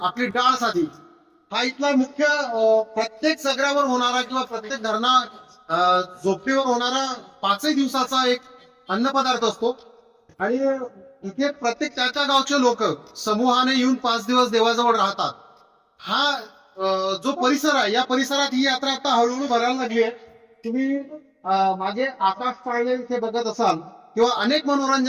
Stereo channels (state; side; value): identical; both; correlation 1.00